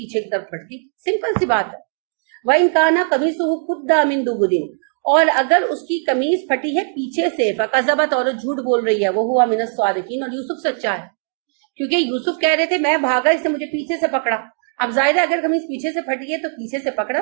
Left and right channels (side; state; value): left; silent; digital silence